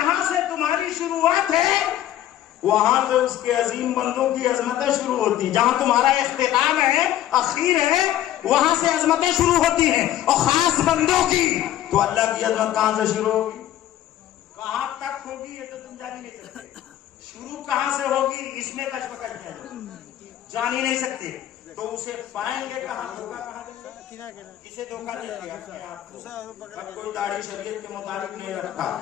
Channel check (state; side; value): quieter; right; 12.7 dB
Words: سے تمہاری شروعات ہے وہاں سے اس کے عظیم بندوں کی عظمتیں شروع ہوتی ہیں. جہاں تمہارا اختتام ہے, اخیر ہے, وہاں سے عظمتیں شروع ہوتی ہیں, اور خاص بندوں کی. تو اللہ کی عظمت کہاں سے شروع ہوگی, کہاں تک ہوگی, یہ تو تم جان ہی نہیں سکتے. شروع کہاں سے ہوگی اس میں کشمکش ہے, جان ہی نہیں سکتے. تو اسے پائیں گے کہاں, دھوکہ کہاں دیں گے, کسے دھوکہ دیتے اپنے آپ کو. کوئی داڑھی شریعت کے مطابق نہیں رکھتا